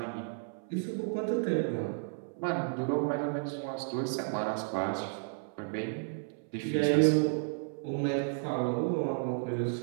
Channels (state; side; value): silent; left; 56 dB below the other